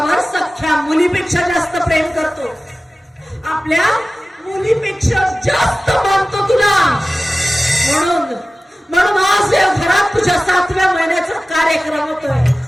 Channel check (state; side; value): normal; both; correlation 0.96